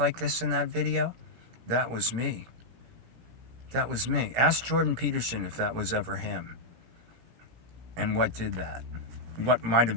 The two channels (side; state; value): left; late; 17 ms